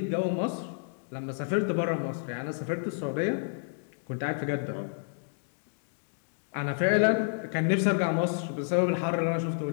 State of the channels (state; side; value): silent; right; digital silence